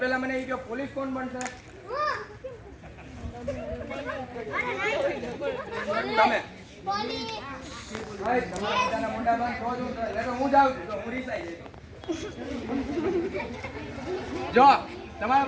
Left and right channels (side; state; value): both; identical; correlation 1.00